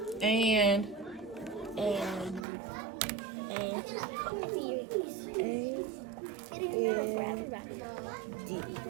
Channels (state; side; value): drops out; left; at 2.5 s